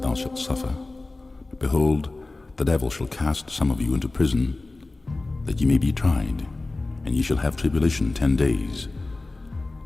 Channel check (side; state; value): right; quieter; 3.2 dB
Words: shalt suffer. Behold, the devil shall cast some of you into prison, that ye may be tried, and ye shall have tribulation 10 days.